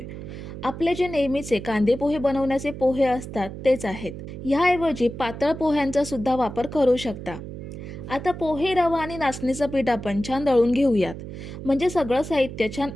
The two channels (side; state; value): right; noise; hum, 10 dB below the sound